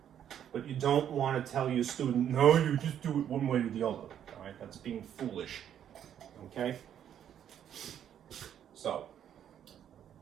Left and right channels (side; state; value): left; quieter; 9.7 dB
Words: But you don't want to tell your student, no, you just do it one way or the other, all right? That's being foolish, okay? So,